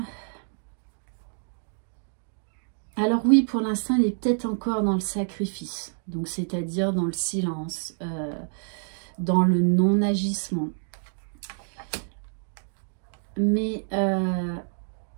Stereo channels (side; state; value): left; silent; digital silence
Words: Alors oui, pour l'instant, il est peut-être encore dans le sacrifice. Donc, c'est-à-dire dans le silence, dans le non-agissement. Mais